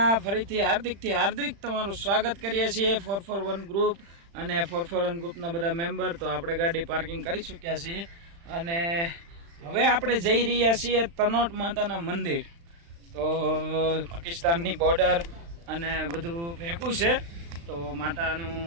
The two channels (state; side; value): late; left; 35 ms